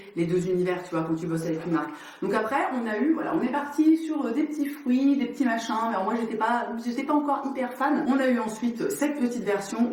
les deux univers, tu vois, quand tu bosses avec une marque. Donc après, on est parti sur des petits fruits, des petits machins, mais alors moi, j'étais pas encore hyper fan. On a eu ensuite cette petite version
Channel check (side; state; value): both; identical; correlation 1.00